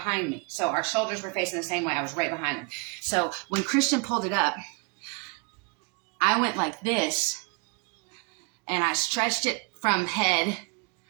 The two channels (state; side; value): quieter; left; 32.4 dB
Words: me. So our shoulders were facing the same way. I was right behind him. So when Christian pulled it up, I went like this, and I stretched it from head